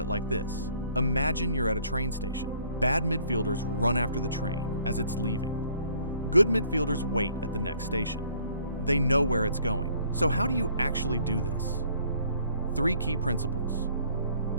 like this. Imagine you're at a train station. Bad midfielders run after the train as it's leaving. Good midfielders wait at the next station. They know where it's going. So how do you actually do this? 3 key principles.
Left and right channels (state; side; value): inverted; both; correlation -0.60